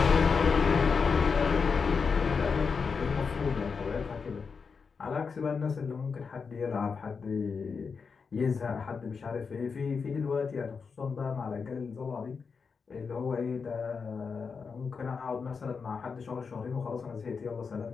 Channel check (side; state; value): right; quieter; 5.4 dB